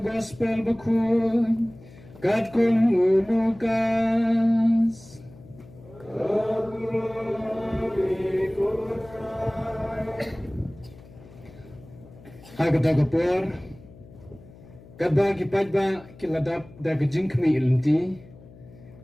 gospel bakun, kat kung ulukas. Hagda kapor, kadba kipajba kiladap da kajing kmi ilenti.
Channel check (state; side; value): noise; left; hum, 21 dB below the sound